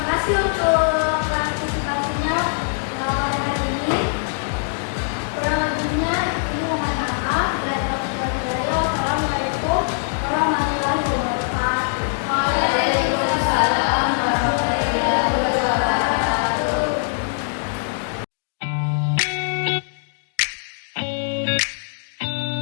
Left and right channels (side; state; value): right; silent; digital silence